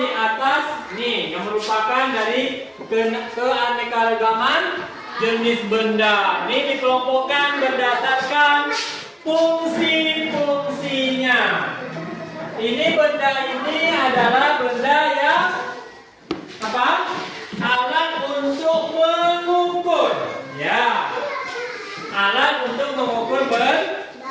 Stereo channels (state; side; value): identical; both; correlation 1.00